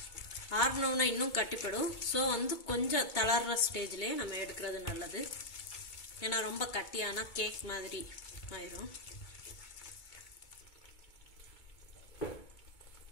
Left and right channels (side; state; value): right; late; 2.2 ms